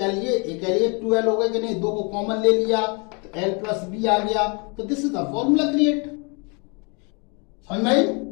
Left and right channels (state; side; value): quieter; right; 33.4 dB